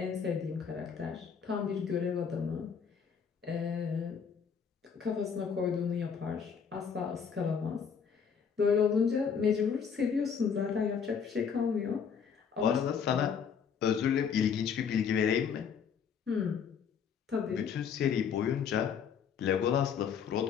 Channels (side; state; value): right; quieter; 6.9 dB